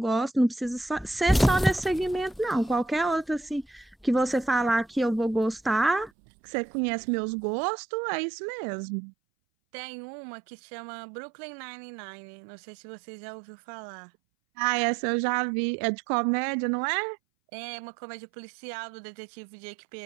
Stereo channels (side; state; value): left; drops out; at 6.1 s